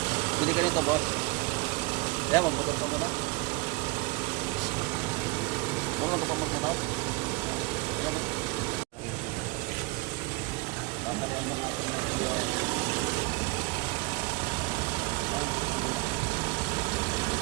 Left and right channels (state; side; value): quieter; left; 25.3 dB